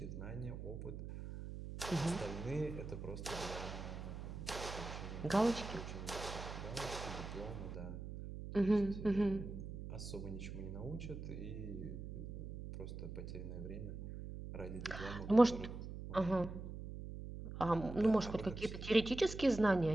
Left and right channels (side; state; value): right; noise; hum, 8 dB below the sound